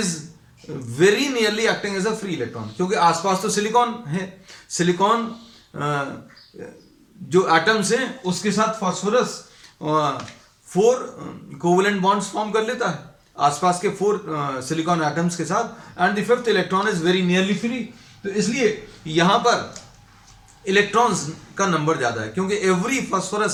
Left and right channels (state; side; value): identical; both; correlation 1.00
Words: very nearly acting as a free electron, क्योंकि आसपास तो सिलिकॉन है. सिलिकॉन जो एटम्स हैं उसके साथ फास्फोरस 4 कोवेलेंट बॉन्ड्स फॉर्म कर लेता है आसपास के 4 सिलिकॉन एटम्स के साथ, and the fifth electron is very nearly free. तो इसलिए यहां पर इलेक्ट्रॉन्स का नंबर ज्यादा है, क्योंकि every